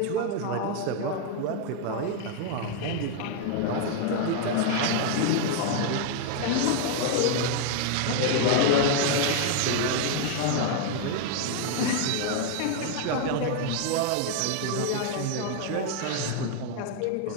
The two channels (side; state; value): both; different; correlation 0.00